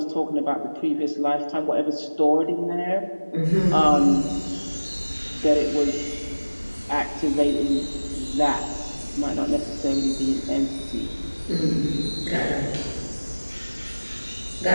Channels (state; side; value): inverted; both; correlation -1.00